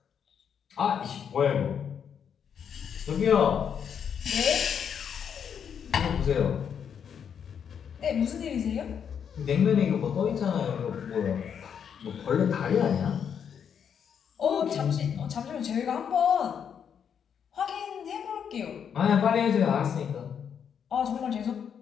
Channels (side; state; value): right; quieter; 7.8 dB